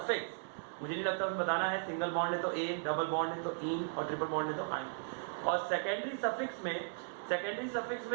मुझे नहीं लगता उसमें बताना है, सिंगल बॉन्ड है तो ए, डबल बॉन्ड है तो इन और ट्रिपल बॉन्ड है तो आइन। और सेकेंडरी सफिक्स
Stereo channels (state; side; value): silent; left; 53 dB below the other